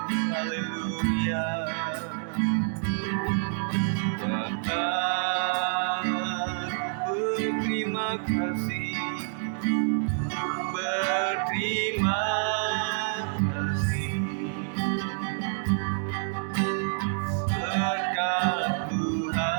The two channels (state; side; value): silent; left; 59 dB below the other